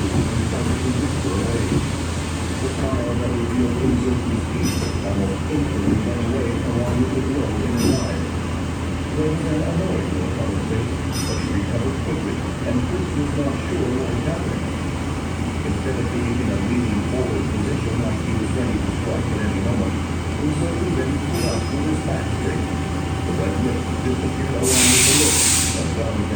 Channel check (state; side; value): identical; both; correlation 1.00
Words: and started to whisper away. The smile that revealed uncertain speech almost instantly went away along with the glow in her eyes. There was an annoyed look on her face, but she recovered quickly, and Chris was not sure what was happening. Instead of being in a leaning forward position like he was ready to strike at any moment, Uzoku then stood up with his back straight. The red lips disappeared along with the look, as well as